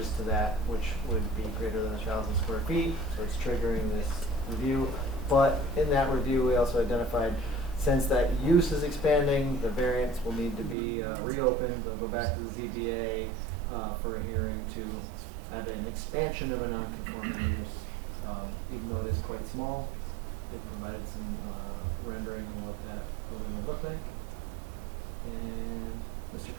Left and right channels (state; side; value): drops out; left; at 10.8 s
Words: to that, which would be greater than 1,000 square feet, so it's triggering this review. But in that review, we also identified, since that use is expanding, the variance will need to be reopened. They'll go back to the ZBA for a hearing to have an expansion of a non-conforming use. Even though it is quite small, it provided some rendering of what that building would look like. And Mr.